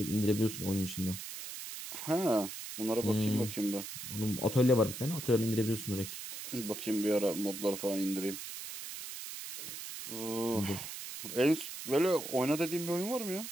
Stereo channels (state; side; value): noise; right; hiss, 9 dB below the sound